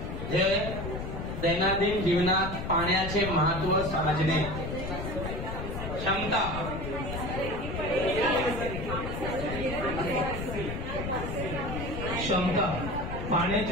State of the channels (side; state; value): left; noise; rumble, 5 dB below the sound